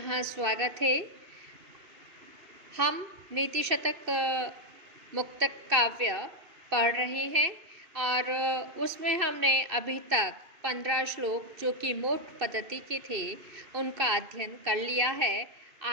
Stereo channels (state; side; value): late; left; 2.6 ms